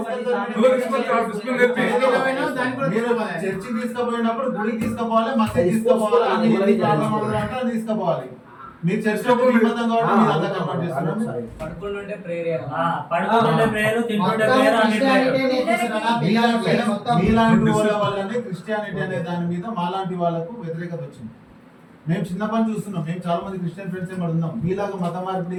మీరు చర్చికి తీసుకుపోయినప్పుడు గుడికి తీసుకుపోవాలి, మసీద్ తీసుకుపోవాలి, అన్ని తీసుకుపోవాలి. మీరు చర్చిలో నిబంధన కాబట్టి మీరు అంతా కంప్లీట్ చేస్తున్నారు. పడుకుంటుంటే ప్రేయర్, తింటుంటే ప్రేయర్, అన్ని ప్రేయర్. మీలాంటి వాళ్ళ వల్లనే క్రిస్టియానిటీ అనే దాని మీద మాలాంటి వాళ్ళకు వ్యతిరేకత వచ్చింది. మేము చిన్నప్పటి చూస్తున్నాం. మేము చాలా మంది క్రిస్టియన్ ఫ్రెండ్స్ ఏమి ఉన్నాం. మీలాగా మత మార్పిడి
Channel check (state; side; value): identical; both; correlation 1.00